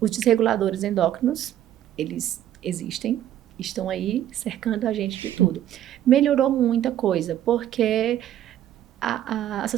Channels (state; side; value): quieter; left; 11.7 dB